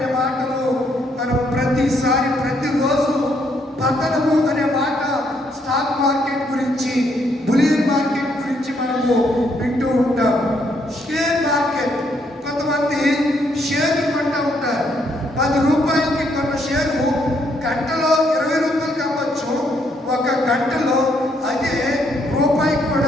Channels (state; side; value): normal; both; correlation 0.72